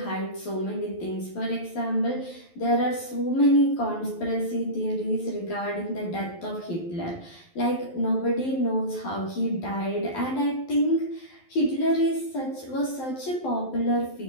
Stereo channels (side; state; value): right; late; 11 ms